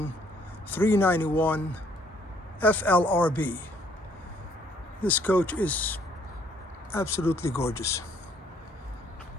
391 FLRB. This coach is absolutely gorgeous.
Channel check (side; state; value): both; normal; correlation 0.64